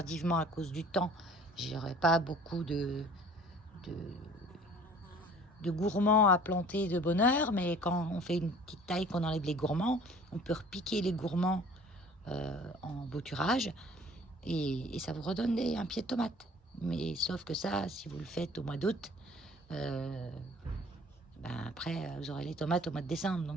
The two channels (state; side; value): normal; both; correlation 0.50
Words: à cause du temps, j'aurais pas beaucoup de gourmands à planter de bonne heure, mais quand on fait une petite taille, qu'on enlève les gourmands, on peut repiquer les gourmands en bouturage, et ça vous redonne un pied de tomate. Mais sauf que ça, si vous le faites au mois d'août, après vous aurez les tomates au mois de décembre,